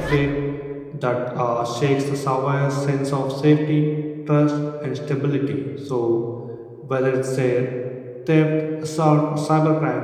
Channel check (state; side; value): identical; both; correlation 1.00